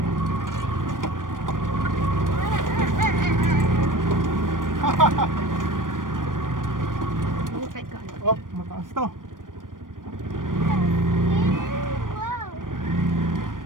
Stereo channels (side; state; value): left; late; 0.90 ms